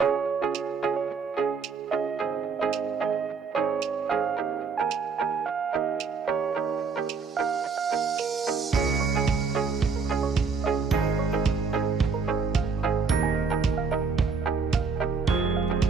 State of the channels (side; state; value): left; quieter; 5.2 dB